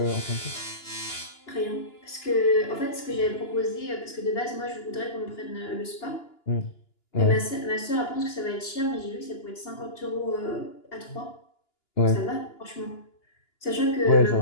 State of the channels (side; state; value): right; late; 2.9 ms